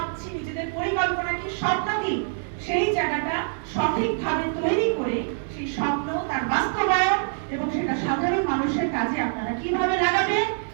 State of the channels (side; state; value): left; silent; digital silence